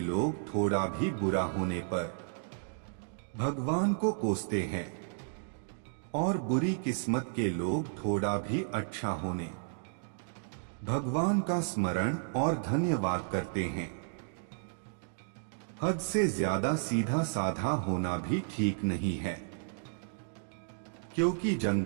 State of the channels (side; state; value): left; silent; digital silence